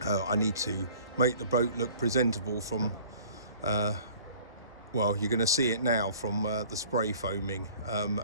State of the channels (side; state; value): both; inverted; correlation -0.50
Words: I need to make the boat look presentable from, well, you're going to see it now from the spray foaming,